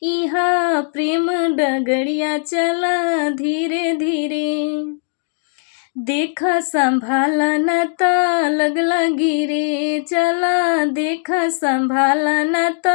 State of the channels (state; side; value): silent; right; digital silence